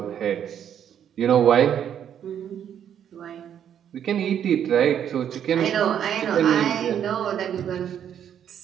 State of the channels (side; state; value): left; quieter; 9.3 dB